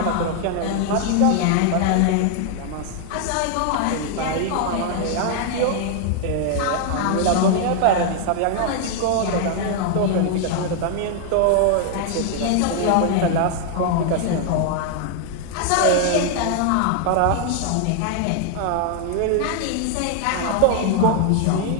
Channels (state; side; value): different; both; correlation 0.00